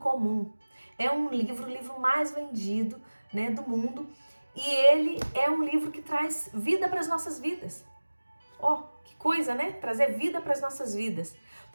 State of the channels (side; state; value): both; inverted; correlation -1.00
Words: É um livro, o livro mais vendido, do mundo. E ele é um livro que traz vida para as nossas vidas. Ó, que coisa, Trazer vida para as nossas vidas.